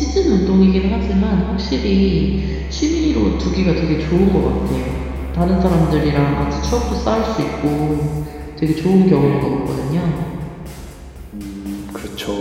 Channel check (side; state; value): both; identical; correlation 1.00